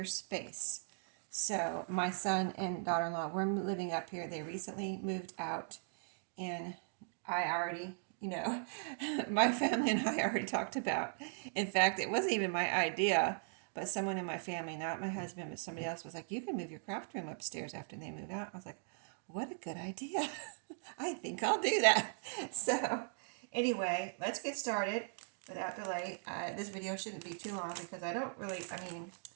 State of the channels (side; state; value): left; silent; digital silence